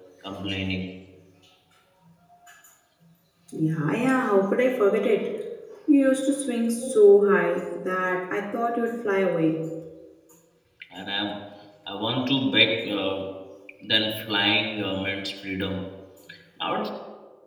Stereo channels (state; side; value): identical; both; correlation 1.00